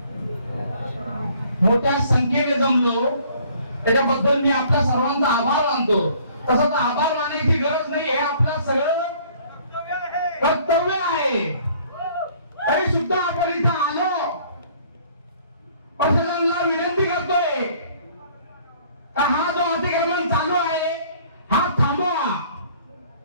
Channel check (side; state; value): both; inverted; correlation -0.57